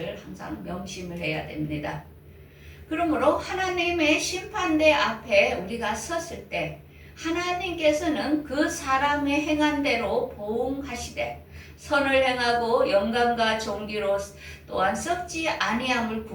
항상 명심을 해야 됩니다. 그러므로 하나님의 심판대 앞에 우리가 섰을 때 하나님께서는 그 사람의 행한 대로 보응하시되 선을 행하고 영광과 존귀로 또한 썩지 아니함을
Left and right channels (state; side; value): identical; both; correlation 1.00